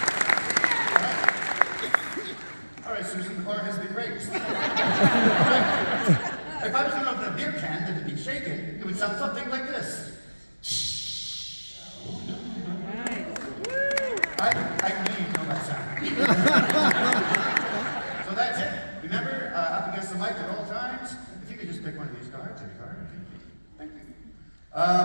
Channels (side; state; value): both; inverted; correlation -1.00